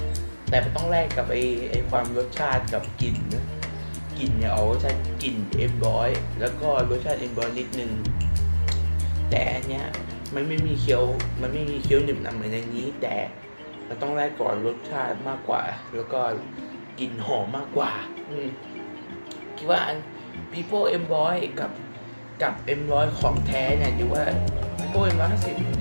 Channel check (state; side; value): inverted; both; correlation -1.00